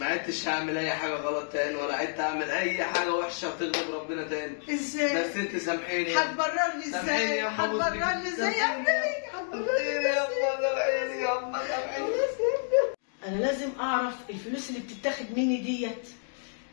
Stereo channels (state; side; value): silent; right; digital silence